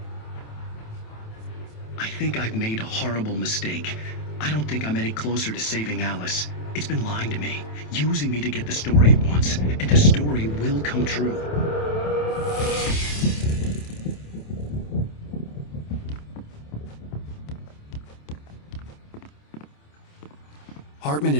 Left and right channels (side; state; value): right; late; 27 ms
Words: I think I've made a horrible mistake. I don't think I'm any closer to saving Alice. It's been lying to me, using me to get the story it wants, and the story will come true. Hartman